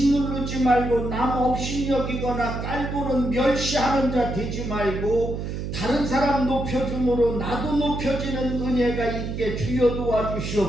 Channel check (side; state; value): right; noise; hum, 5 dB below the sound